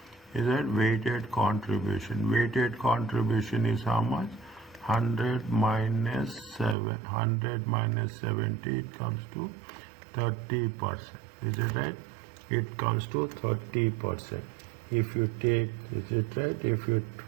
Is that weighted contribution? Weighted contribution is how much? 100 minus 70, it comes to 30%. Is it right? It comes to 30%. If you take, is it right? If you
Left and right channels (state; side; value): drops out; left; at 6.8 s